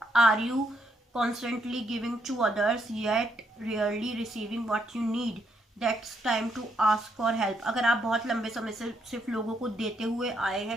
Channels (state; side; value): normal; both; correlation 0.75